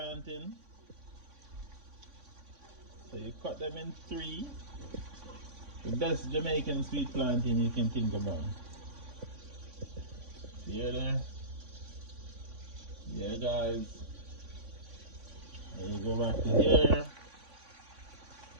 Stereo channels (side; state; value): left; late; 3.5 ms